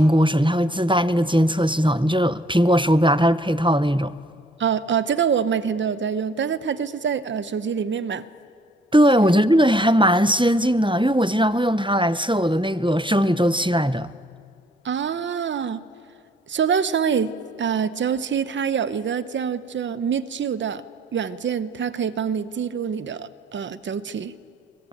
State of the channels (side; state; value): both; normal; correlation 0.60